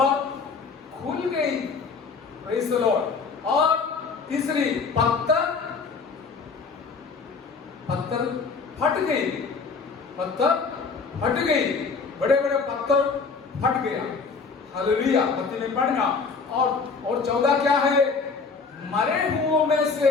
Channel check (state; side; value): quieter; right; 4.9 dB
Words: खुल गई, प्रेज़ द लॉर्ड। और तीसरी पत्थर फट गई, पत्थर फट गई, बड़े बड़े पत्थर फट गया। हालेलुया, मत्ती में पढ़ना। और 14 क्या है? मरे हुओं में